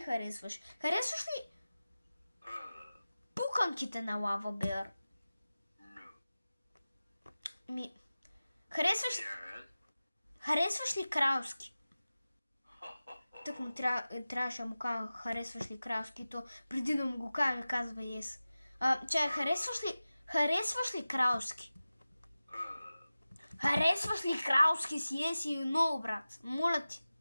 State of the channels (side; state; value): both; inverted; correlation -0.96